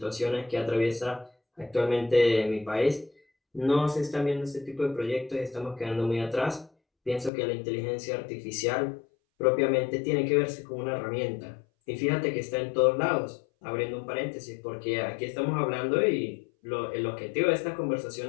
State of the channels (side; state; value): right; drops out; at 7.3 s